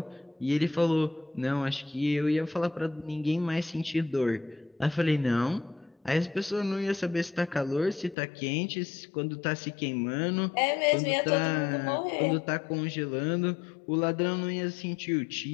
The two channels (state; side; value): drops out; right; at 8.2 s